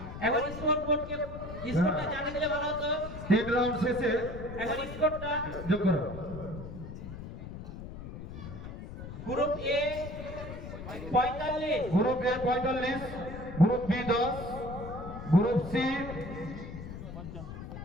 একবার স্কোর বোর্ডকে স্কোরটা জানিয়ে দিলে ভালো হতো। 3 রাউন্ড শেষে একবার স্কোরটা। যোগ করো। Group A 45, group A 45, group B 10, group C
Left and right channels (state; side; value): noise; left; rumble, 10 dB below the sound